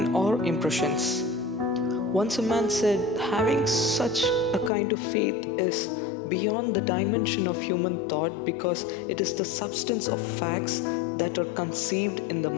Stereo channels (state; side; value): drops out; right; at 4.7 s